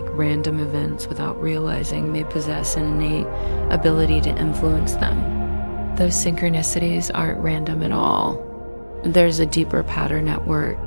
random events without realizing they possess an innate ability to influence them. Those synchronicities aren't random at all. There's a deeper pattern at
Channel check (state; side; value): inverted; both; correlation -1.00